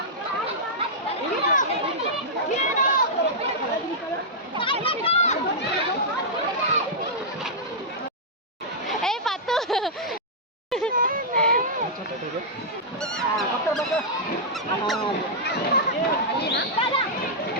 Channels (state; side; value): normal; both; correlation -0.10